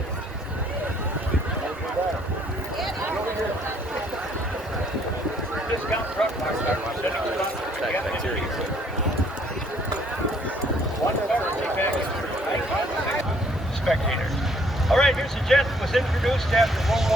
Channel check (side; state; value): both; normal; correlation 0.64